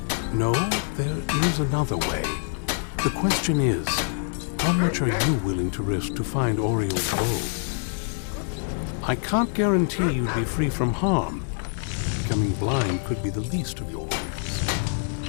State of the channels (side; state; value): right; silent; 61 dB below the other